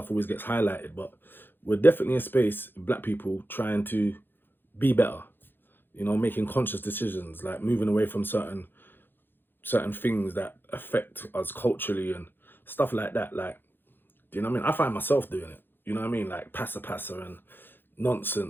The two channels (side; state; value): right; late; 0.099 ms